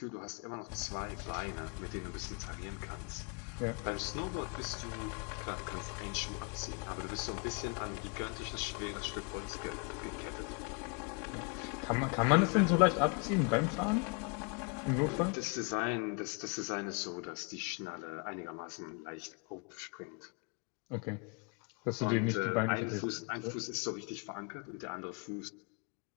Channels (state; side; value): quieter; right; 34.0 dB